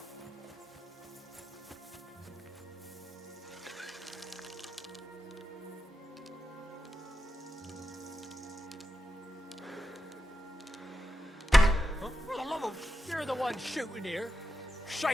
For the love of... You're the one shooting here.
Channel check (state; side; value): normal; both; correlation 0.88